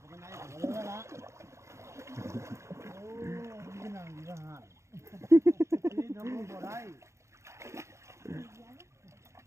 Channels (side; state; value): left; late; 0.14 ms